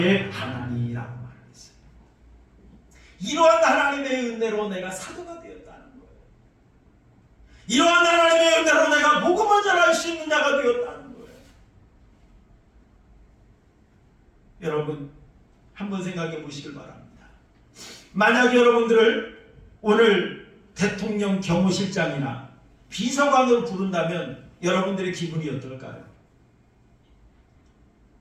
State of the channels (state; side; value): identical; both; correlation 1.00